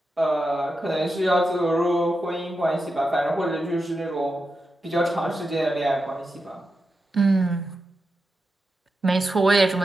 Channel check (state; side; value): normal; both; correlation 0.89